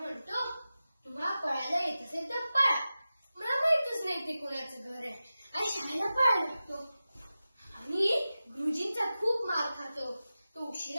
म्हणतो, तुम्हाला पळायला येत असेल तर पळा, मला माहितच नाही ते कोणाचं घर आहे. आणि शाळेला पळायला लागतो आणि गुरुजींचा खूप मार खातो. तो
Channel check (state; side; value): inverted; both; correlation -0.94